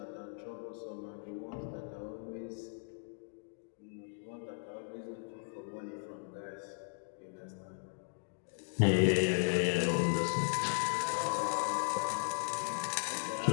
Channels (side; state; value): right; silent; digital silence